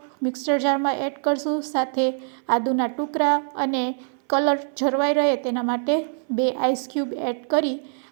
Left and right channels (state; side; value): silent; left; 58 dB below the other